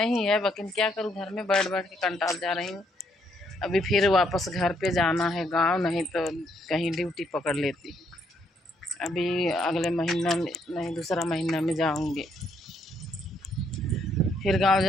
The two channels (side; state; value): both; normal; correlation 0.72